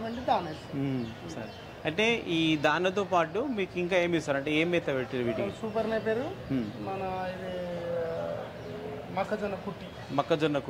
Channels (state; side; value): identical; both; correlation 1.00